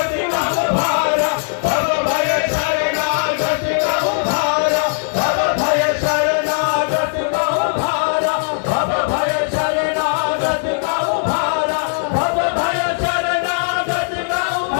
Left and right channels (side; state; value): right; silent; digital silence